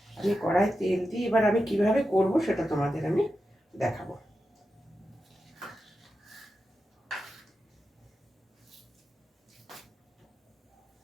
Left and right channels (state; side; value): normal; both; correlation 0.90